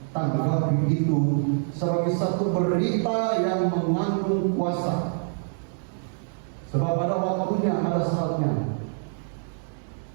tanggapi itu sebagai satu berita yang mengandung kuasa. Sebab pada waktunya, ada saatnya.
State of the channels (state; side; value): silent; left; digital silence